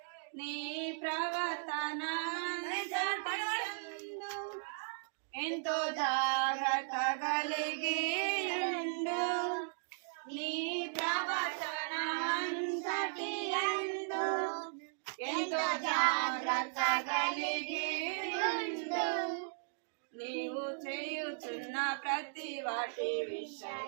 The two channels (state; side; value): silent; left; digital silence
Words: నీ ప్రవర్తన ఎంతో జాగ్రత్త కలిగి ఉండు. నీ ప్రవర్తన అంతటి యందు ఎంతో జాగ్రత్త కలిగి ఉండు. నీవు చేయుచున్న ప్రతి వాటి